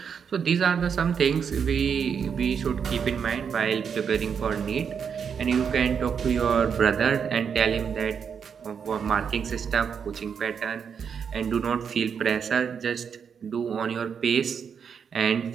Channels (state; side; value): quieter; left; 6.9 dB